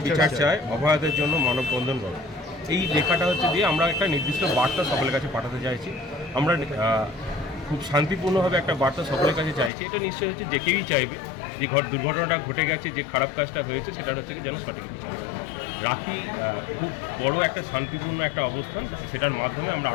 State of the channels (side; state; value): right; drops out; at 9.7 s